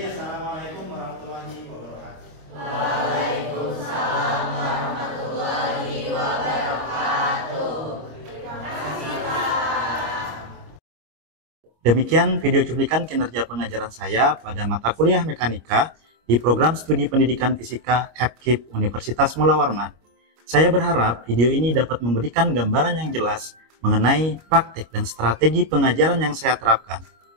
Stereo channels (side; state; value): left; late; 25 ms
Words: assalamualaikum warahmatullahi wabarakatuh. Waalaikumsalam warahmatullahi wabarakatuh. Terima kasih Pak. Demikian video cuplikan kinerja pengajaran saya pada mata kuliah mekanika di program studi pendidikan fisika FKIP Universitas Mula Warman. Saya berharap video ini dapat memberikan gambaran yang jelas mengenai praktik dan strategi pengajaran yang saya terapkan,